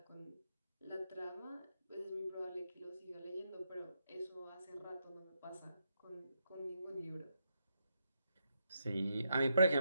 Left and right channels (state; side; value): inverted; both; correlation -0.80